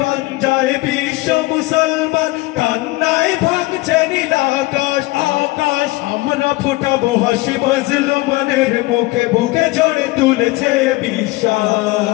বিশ্ব মুসলমান কান্নায় ভাঙছে নীল আকাশ আমরা ফোটাবো হাসি মাজলুমানের মুখে বুকে ঝড়ে তুলেছে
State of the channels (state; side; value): quieter; right; 21.0 dB